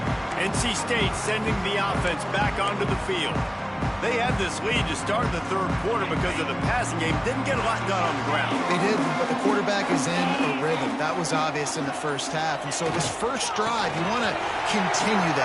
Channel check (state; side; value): identical; both; correlation 1.00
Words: NC State sending the offense back onto the field. They had this lead to start the 3rd quarter because of the passing game. Didn't get a lot done on the ground. They did, but the quarterback is in a rhythm. That was obvious in the 1st half. And so this 1st drive, you want to continue